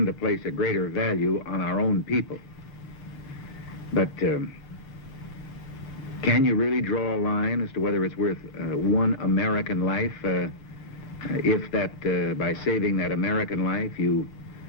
to place a greater value on our own people. But Can you really draw a line as to whether it's worth one American life if that, by saving that American life, you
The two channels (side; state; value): both; normal; correlation -0.18